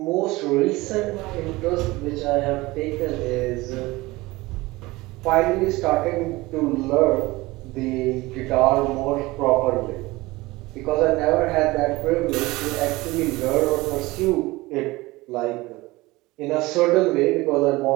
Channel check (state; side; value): quieter; left; 20.8 dB